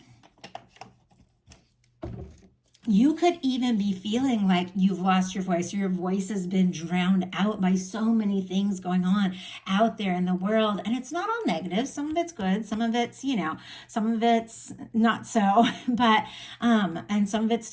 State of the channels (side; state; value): both; identical; correlation 1.00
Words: You could even be feeling like you've lost your voice, or your voice has been drowned out by so many things going on out there in the world. And it's not all negative. Some of it's good. Some of it's, some of it's not so, but, and some of it's